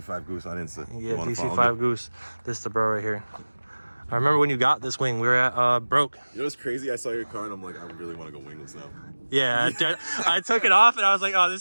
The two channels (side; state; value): both; inverted; correlation -1.00